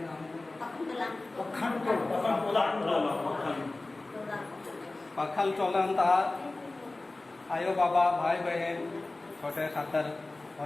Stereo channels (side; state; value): right; quieter; 3.1 dB